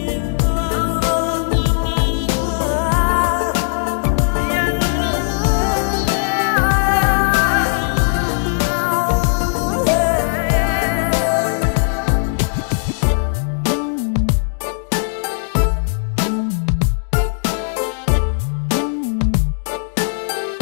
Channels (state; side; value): silent; right; digital silence